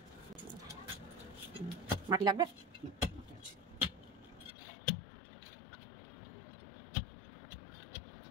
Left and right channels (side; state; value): right; drops out; at 4.5 s